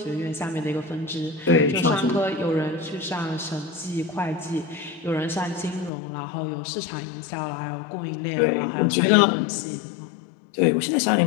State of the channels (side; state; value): right; drops out; at 5.9 s